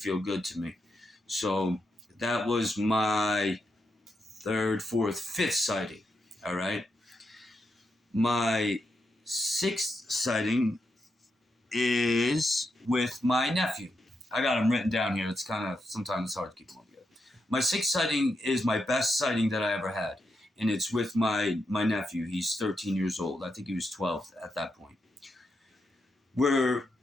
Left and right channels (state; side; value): normal; both; correlation 0.84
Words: good to me. So that was my third, fourth, fifth sighting. All right. My sixth sighting is with my nephew. I got him written down here. It's kind of sometimes it's hard to keep them all together. My sixth sighting is my best sighting that I ever had, and it's with my nephew. He's 13 years old. I think he was 12 at that point. We